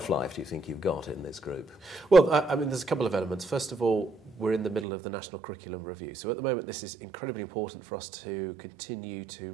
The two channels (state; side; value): drops out; left; at 4.9 s